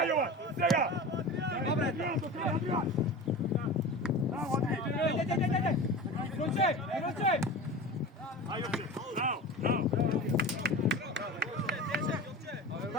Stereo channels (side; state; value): both; normal; correlation 0.32